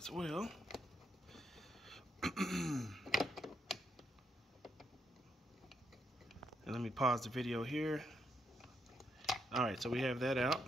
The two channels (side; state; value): both; normal; correlation 0.78